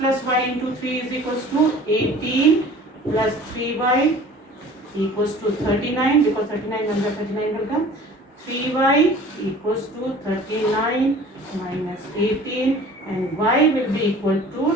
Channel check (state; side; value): normal; both; correlation 0.46